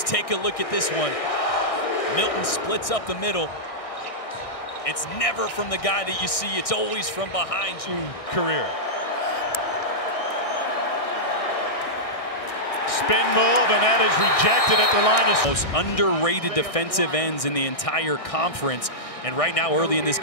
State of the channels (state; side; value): late; right; 1.6 ms